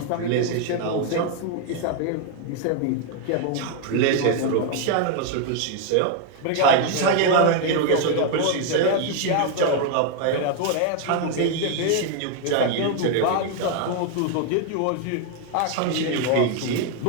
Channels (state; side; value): different; both; correlation 0.00